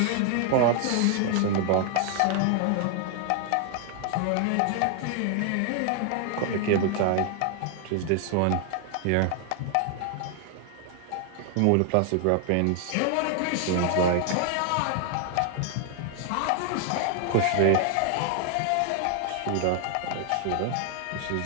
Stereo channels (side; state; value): both; different; correlation 0.00